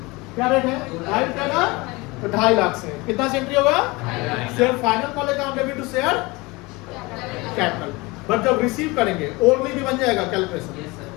क्या रेट है? 2.5 का, तो 2.5 लाख से। कितना से एंट्री होगा? Share final call account debit to share capital. But जब रिसीव करेंगे ओनली भी बन जाएगा कैलकुलेशन।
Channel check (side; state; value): right; quieter; 24.0 dB